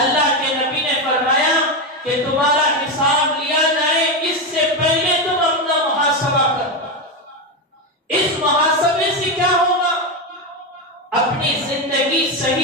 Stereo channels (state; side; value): normal; both; correlation 0.11